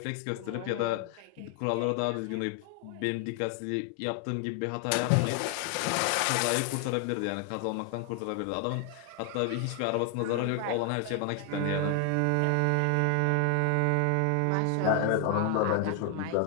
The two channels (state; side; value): different; both; correlation 0.00